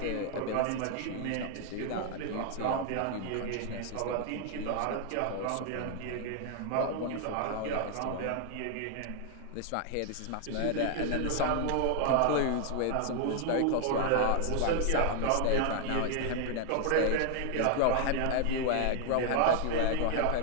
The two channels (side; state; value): both; different; correlation 0.00